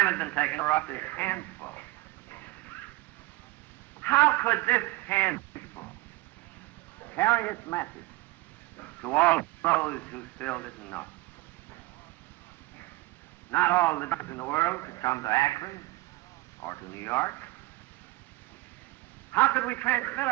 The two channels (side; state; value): left; quieter; 20.0 dB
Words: had been taken for us, this handful. How could this handful carry its message to all those who still didn't know? Not all the doctors in the world could come to Akron or to New York. How could we transmit